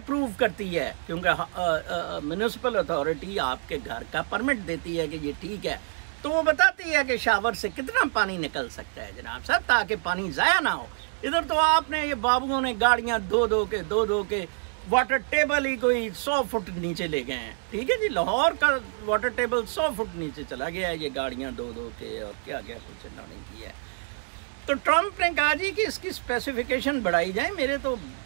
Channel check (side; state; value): left; silent; 60 dB below the other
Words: करती है, क्योंकि म्युनिसिपल अथॉरिटी आपके घर का परमिट देती है कि ये ठीक है। तो वो बताती है कि शावर से कितना पानी निकल सकता है जनाब साहब, ताकि पानी जाया ना हो। इधर तो आपने ये बाबुओं ने गाड़ियां दो दो के वाटर टेबल ही कोई 100 फुट नीचे ले गए हैं, ठीक है जी। लाहौर का वाटर टेबल 100 फुट नीचे चला गया है, ये गाड़ियां दो के और क्या क्या कुछ इन्होंने किया है। तो ट्रम्प ने कहा जी कि इसकी स्पेसिफिकेशन बढ़ाई जाए, मेरे तो